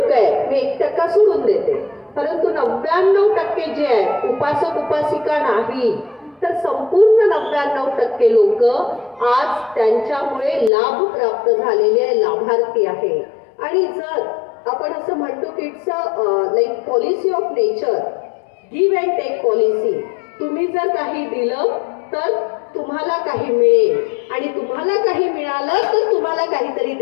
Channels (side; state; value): right; drops out; at 10.7 s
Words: आहेत, मी 1% सोडून देते, परंतु 99% जे आहेत उपासक उपासिका नाही, तर संपूर्ण 99% लोक आज त्यांच्यामुळे लाभ प्राप्त झालेले लाभार्थी आहे. आणि जर आपण असं म्हणतो की it's like policy of nature, give and take policy. तुम्ही जर काही दिलं तर तुम्हाला काही मिळेल आणि तुम्हाला काही मिळालं तर तुम्हाला काहीतरी